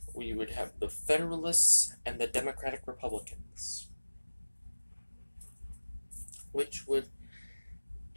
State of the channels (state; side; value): inverted; both; correlation -1.00